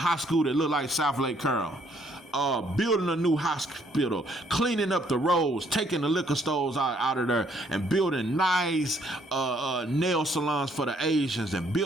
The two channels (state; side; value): normal; both; correlation 0.67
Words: school that look like South Lake Carroll. Building a new hospital, cleaning up the roads, taking the liquor stores out of there, and building nice nail salons for the Asians, and